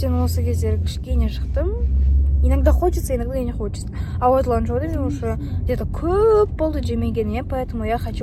осы кездері кішкене шықтым. Иногда хочется, иногда не хочется. А вот Ланчжоуды мен уже где-то көп болды жемегеніме, поэтому я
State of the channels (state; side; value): identical; both; correlation 1.00